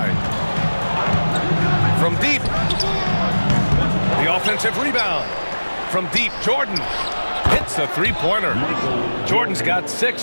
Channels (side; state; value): both; inverted; correlation -1.00